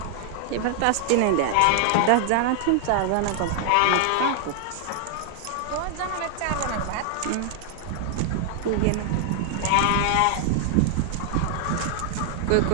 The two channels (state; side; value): different; both; correlation 0.00